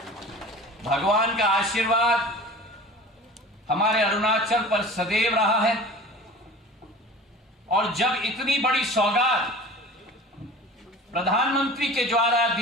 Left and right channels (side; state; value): both; normal; correlation 0.39